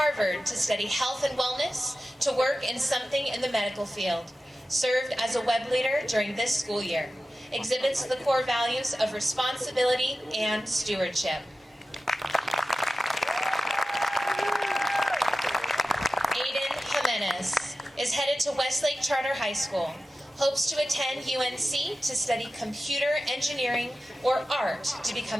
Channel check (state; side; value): normal; both; correlation 0.94